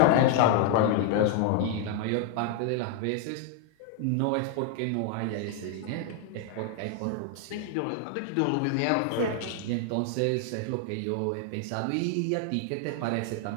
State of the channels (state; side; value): different; both; correlation 0.00